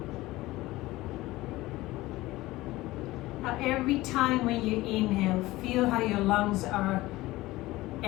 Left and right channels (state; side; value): quieter; right; 18.5 dB